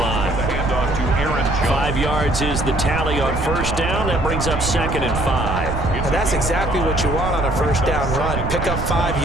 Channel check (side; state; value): right; noise; rumble, 4 dB below the sound